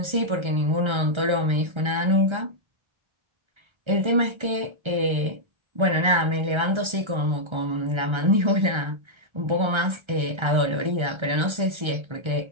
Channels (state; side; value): late; left; 1.3 ms